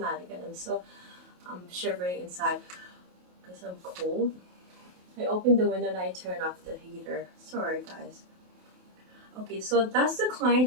and I'm shivering inside because I'm cold. I opened the window and I turned off the heater. Sorry, guys. Okay, so does the client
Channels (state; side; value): late; left; 28 ms